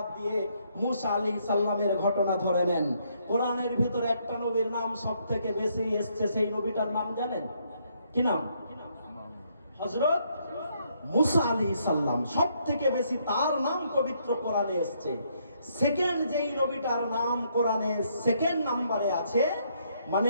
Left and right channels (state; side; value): inverted; both; correlation -0.72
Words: দিয়ে মুসা আলাইহিস সালামের ঘটনা ধরে নেন। কোরআনের ভিতরে একটা নবীর নাম সব থেকে বেশি এসছে, সেই নবীটার নাম জানেন? কি নাম? হযরত মুসা আলাইহিস সালাম। সব থেকে বেশি তার নাম পবিত্র কোরআনে এসছে। সেকেন্ড যেই নবীটার নাম কোরআনে সেকেন্ড নম্বরে আছে,